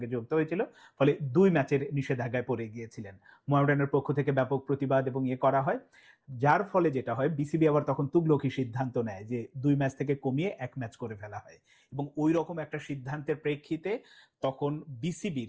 যুক্ত হয়েছিল। ফলে 2 ম্যাচের নিষেধাজ্ঞায় পড়ে গিয়েছিলেন। মোহামেডানের পক্ষ থেকে ব্যাপক প্রতিবাদ এবং করা হয়, যার ফলে যেটা হয়, বিসিবি আবার তখন তুগলকি সিদ্ধান্ত নেয় যে 2 ম্যাচ থেকে কমিয়ে 1 ম্যাচ করে ফেলা হয়। এবং ওই রকম একটা সিদ্ধান্তের প্রেক্ষিতে তখন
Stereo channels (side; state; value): both; identical; correlation 1.00